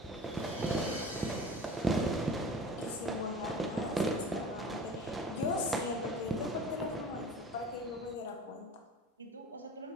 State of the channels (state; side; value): normal; both; correlation 0.39